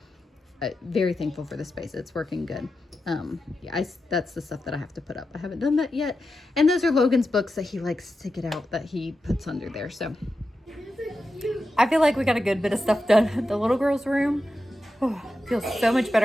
very thankful for the space. It's working good. Yeah, that's the stuff that I have to put up. I haven't done that yet. And those are Logan's books that he likes to get out that he puts under there. So I feel like we got a good bit of stuff done. The little girl's room, feels so much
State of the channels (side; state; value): both; normal; correlation 0.90